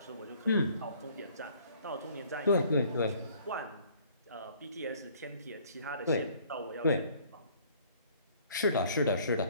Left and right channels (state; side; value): inverted; both; correlation -0.57